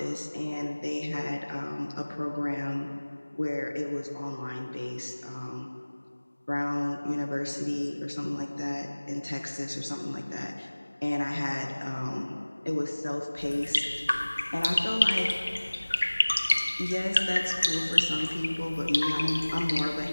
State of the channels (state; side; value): inverted; both; correlation -1.00